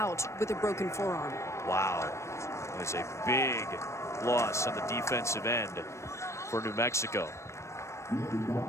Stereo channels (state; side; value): late; right; 0.14 ms